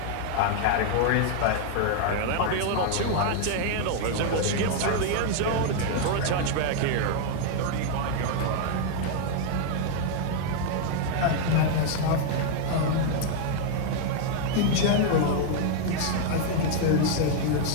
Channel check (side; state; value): both; different; correlation 0.00